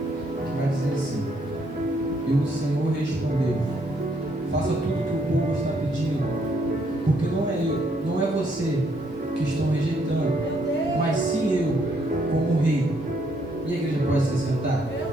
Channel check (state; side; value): normal; both; correlation 0.71